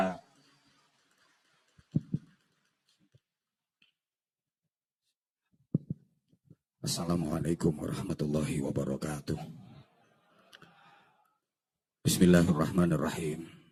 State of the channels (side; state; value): both; identical; correlation 1.00